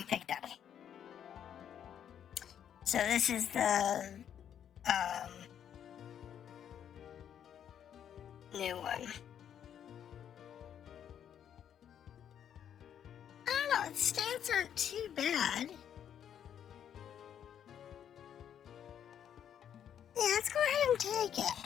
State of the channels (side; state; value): right; quieter; 9.3 dB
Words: picked up. So this is the new one. I don't know, its stats aren't too bad. Yeah, let's go ahead and take it.